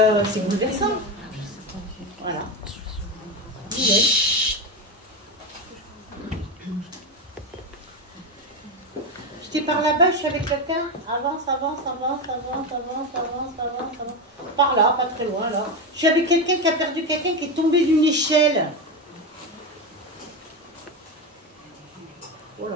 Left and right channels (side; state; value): both; normal; correlation 0.16